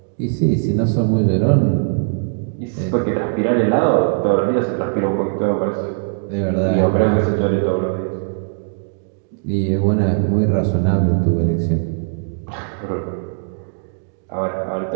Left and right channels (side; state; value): left; silent; digital silence